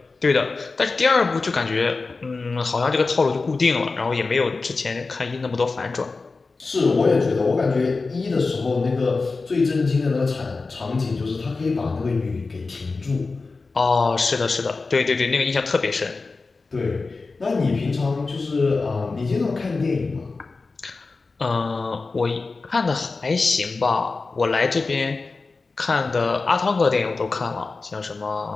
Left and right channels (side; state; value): right; quieter; 3.9 dB